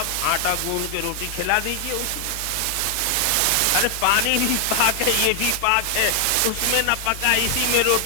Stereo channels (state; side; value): different; both; correlation 0.00